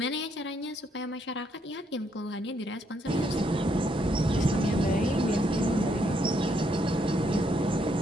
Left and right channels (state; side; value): normal; both; correlation 0.74